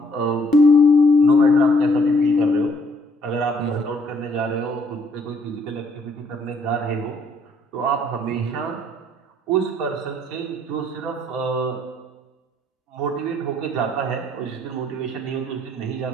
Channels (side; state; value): both; normal; correlation 0.65